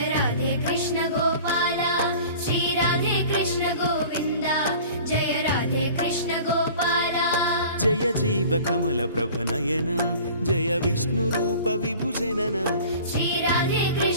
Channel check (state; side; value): inverted; both; correlation -0.44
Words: राधे कृष्ण गोपाला श्री राधे कृष्ण गोविंद जय राधे कृष्ण गोपाला जय जीव कमल प्रभ नयन जय विष्णु रूप विभुजनन श्री राधे